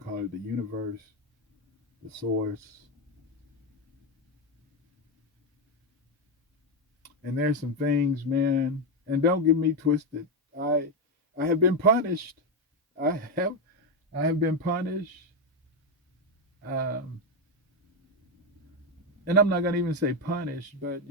call it, the universe, the source. And there's some things, man, and don't get me twisted. I I have been punished. I have I have been punished. Um, and I'm not gonna even say punished, but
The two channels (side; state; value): both; normal; correlation 0.08